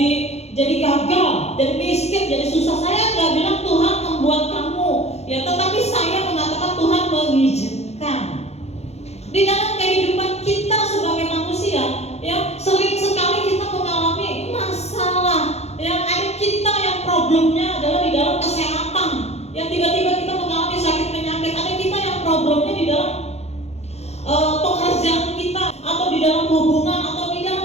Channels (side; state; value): right; late; 0.31 ms